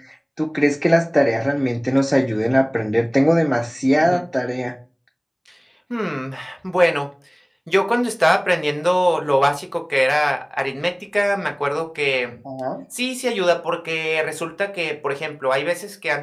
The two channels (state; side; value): identical; both; correlation 1.00